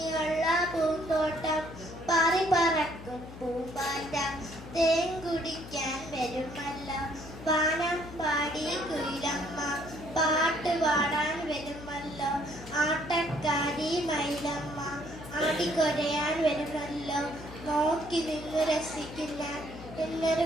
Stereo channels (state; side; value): noise; left; hum, 14 dB below the sound